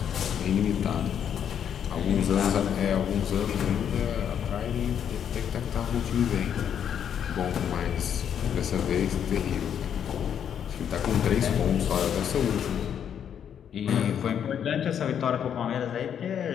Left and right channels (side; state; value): right; quieter; 8.7 dB